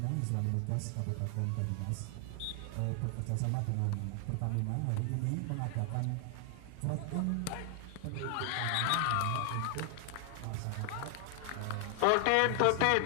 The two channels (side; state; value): both; different; correlation 0.00